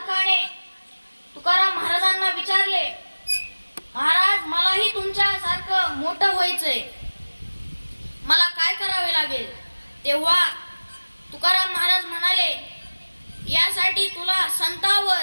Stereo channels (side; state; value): both; inverted; correlation -1.00